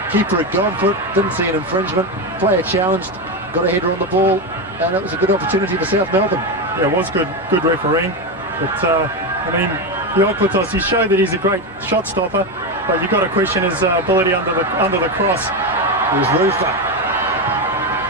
keeper had gone for it, didn't see an infringement. Player challenged, got a header on the ball, and it was a good opportunity for South Melbourne. Yeah, it was good refereeing. But, I mean, the Okotos, he showed that he's a great shot stopper, but you've got to question his ability under the cross. Here's Rufer.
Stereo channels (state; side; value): normal; both; correlation 0.13